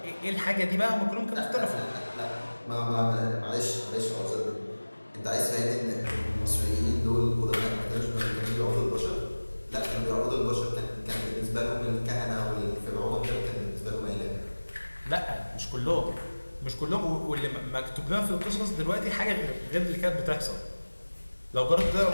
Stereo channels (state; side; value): inverted; both; correlation -1.00